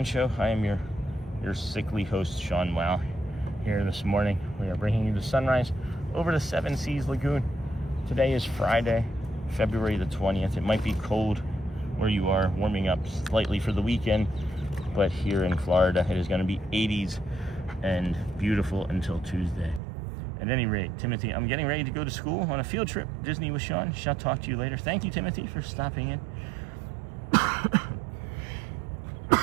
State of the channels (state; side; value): drops out; left; at 19.8 s